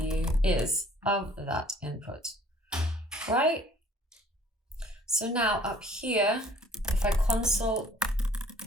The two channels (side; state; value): both; normal; correlation 0.55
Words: is of that input, right? So now up here, if I console